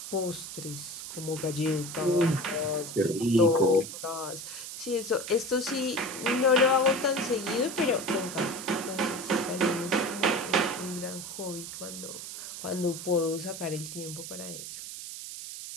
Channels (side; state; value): right; noise; hiss, 9 dB below the sound